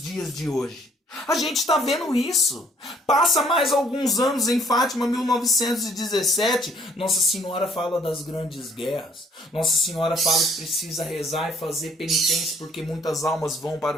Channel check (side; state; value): both; normal; correlation 0.61